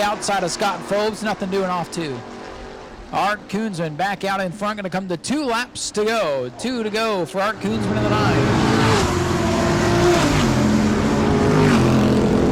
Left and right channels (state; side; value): identical; both; correlation 1.00